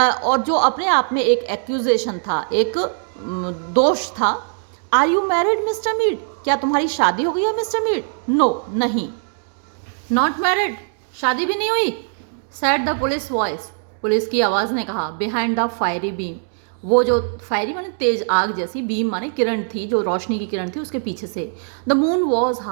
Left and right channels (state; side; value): silent; left; digital silence